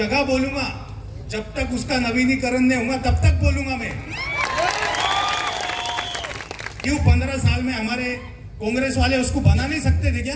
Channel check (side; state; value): both; identical; correlation 1.00